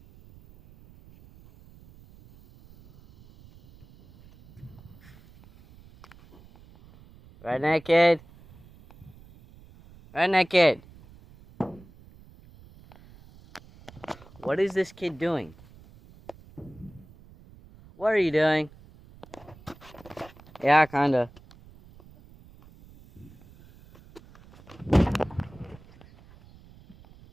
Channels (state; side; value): noise; right; rumble, 23 dB below the sound